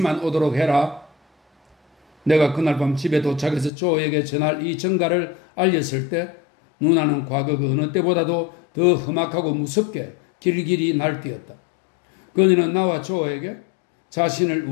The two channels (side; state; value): right; drops out; at 3.7 s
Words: 오도록 해라. 내가 그날 밤 집에 도착해서 조에게 전할 이 전가를 알렸을 때 누나는 과거 그 어느 때보다도 더 험악하고 무섭게 길길이 날뛰었다. 그녀는 나와 조에게 자신을